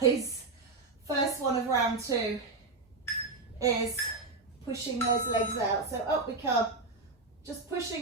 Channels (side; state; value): left; quieter; 3.6 dB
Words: first one of round 2, is pushing those legs out. So up we come, just